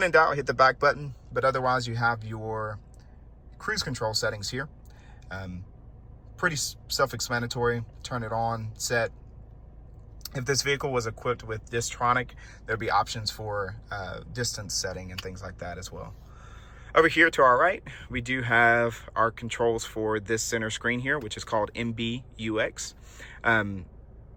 in doubt, hit the back button, but otherwise you have your cruise control settings here. Pretty self-explanatory. Turn it on, set. If this vehicle was equipped with Distronic, there'd be options for distance setting and things like that as well. Over here to our right, we do have our controls for this center screen here, which is called MBUX.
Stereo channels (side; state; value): both; identical; correlation 1.00